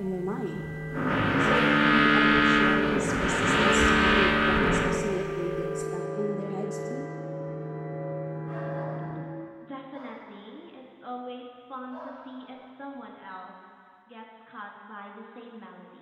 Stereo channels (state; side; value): identical; both; correlation 1.00